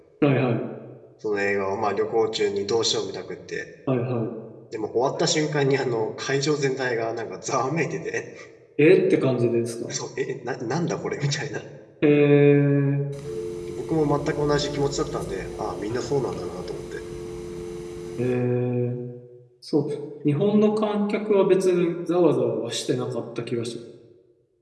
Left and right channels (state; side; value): identical; both; correlation 1.00